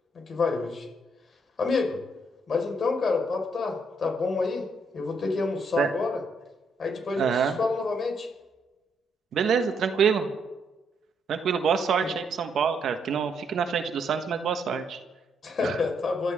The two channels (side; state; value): both; normal; correlation 0.74